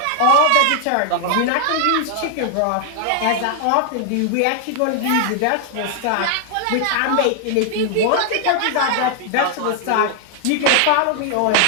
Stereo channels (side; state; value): both; different; correlation 0.00